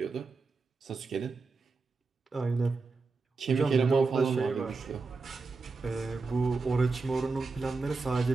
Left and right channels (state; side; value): quieter; left; 4.1 dB